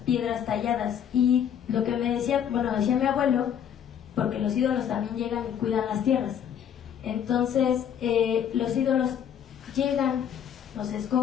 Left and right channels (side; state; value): right; quieter; 8.9 dB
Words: talladas. Y lo que decía mi abuelo, porque los ídolos también llegan y cuidan las tierras. Entonces, los ídolos llegan, nos